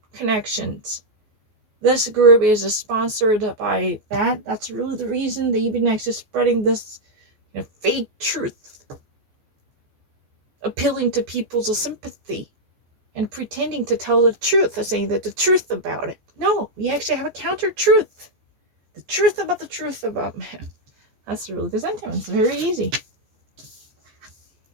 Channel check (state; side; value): late; left; 14 ms